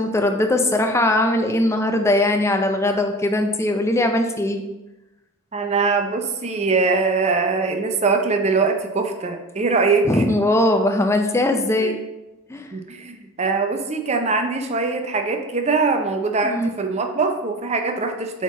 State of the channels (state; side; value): normal; both; correlation 0.36